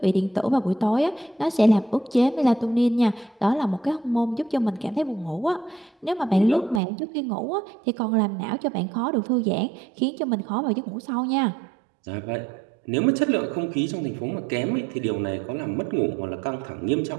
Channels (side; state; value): left; drops out; at 6.8 s